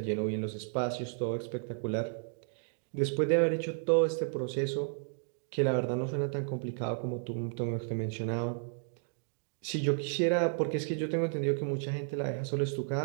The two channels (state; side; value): silent; left; digital silence